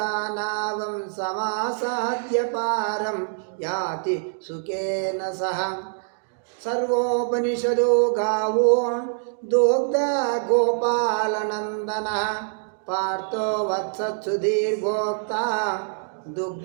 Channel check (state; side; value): silent; left; digital silence